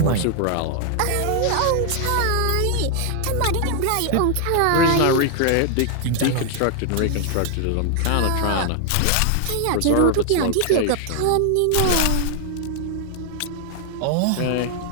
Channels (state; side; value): different; both; correlation 0.00